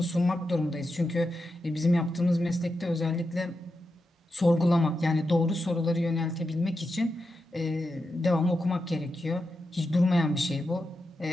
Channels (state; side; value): normal; both; correlation 0.88